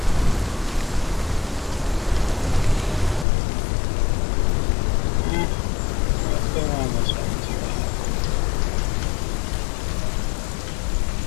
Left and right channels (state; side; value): drops out; right; at 3.2 s